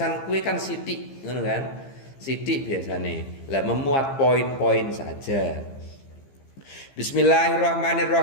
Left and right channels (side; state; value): right; late; 15 ms